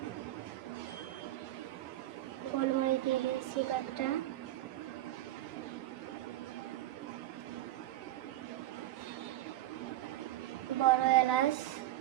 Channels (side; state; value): left; quieter; 14.8 dB